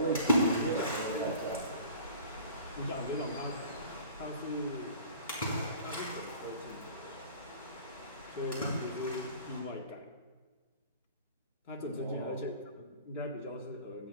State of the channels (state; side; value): inverted; both; correlation -0.45